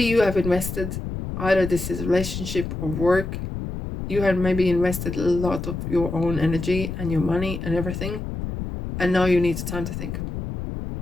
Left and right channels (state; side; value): noise; left; rumble, 6 dB below the sound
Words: have invested, either this is relationship or work, you have maybe invested a lot of your own energy and your money and everything, and now you need time to think.